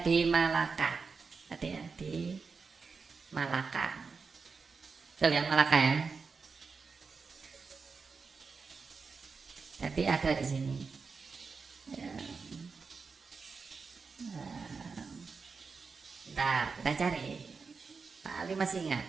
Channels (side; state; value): left; quieter; 4.9 dB